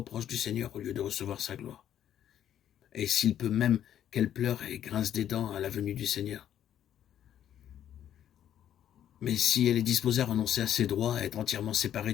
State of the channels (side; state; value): right; quieter; 10.5 dB